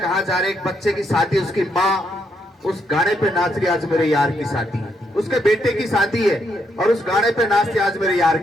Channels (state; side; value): normal; both; correlation 0.77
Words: जा रहे। एक बच्चे की शादी, उसकी माँ उस गाने पे नाच रही, आज मेरे यार की शादी है, उसके बेटे की शादी है और उस गाने पे नाचते आज मेरे यार